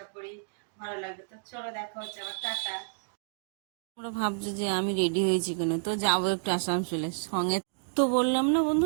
করি ভালো লাগবে। তো চলো দেখা হচ্ছে আবার, টাটা। তোমরা ভাবছো যে আমি রেডি হয়েছি কেন, তো যাবো একটু আসানসোলে সঙ্গে। তো বললাম না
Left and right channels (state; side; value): silent; left; digital silence